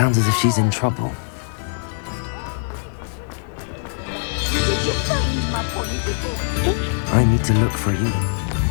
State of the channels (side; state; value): right; silent; digital silence